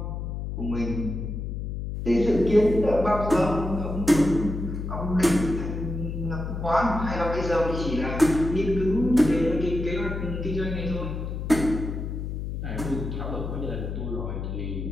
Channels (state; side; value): noise; left; hum, 5 dB below the sound